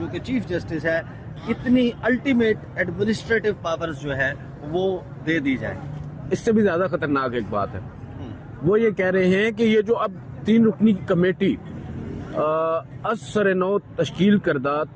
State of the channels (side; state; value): both; identical; correlation 1.00